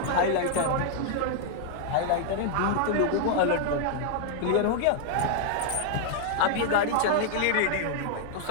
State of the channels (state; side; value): different; both; correlation 0.00